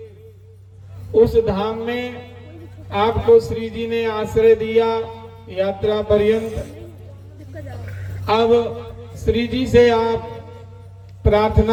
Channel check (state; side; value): identical; both; correlation 1.00